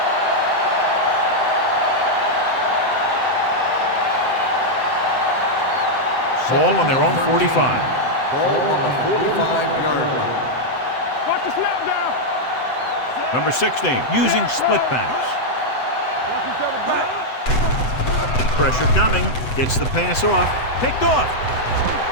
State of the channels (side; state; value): right; late; 7.9 ms